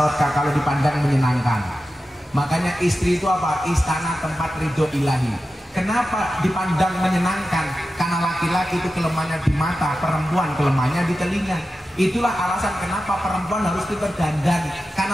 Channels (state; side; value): normal; both; correlation 0.92